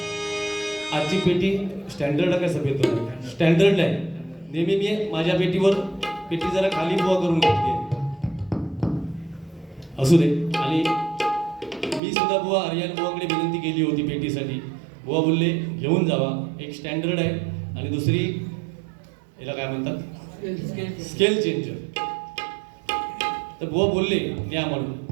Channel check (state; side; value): drops out; left; at 12.0 s